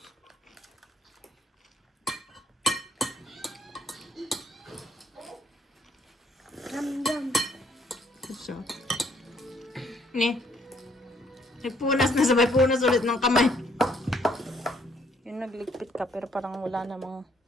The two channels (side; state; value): both; normal; correlation 0.67